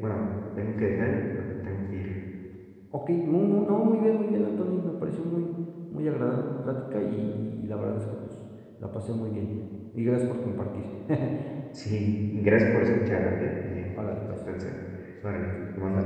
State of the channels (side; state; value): both; identical; correlation 1.00